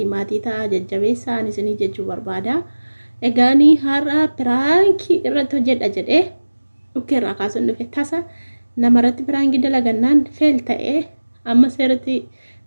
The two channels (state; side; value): inverted; both; correlation -1.00